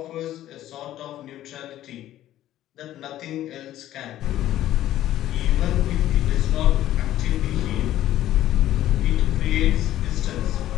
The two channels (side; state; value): right; quieter; 13.3 dB